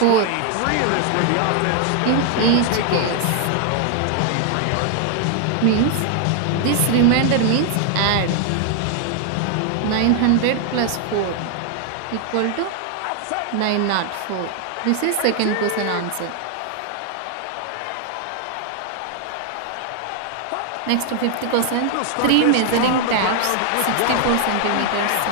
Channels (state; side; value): different; both; correlation 0.00